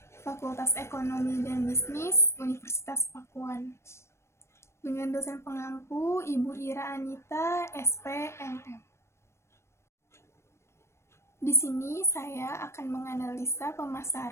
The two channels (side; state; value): right; late; 0.13 ms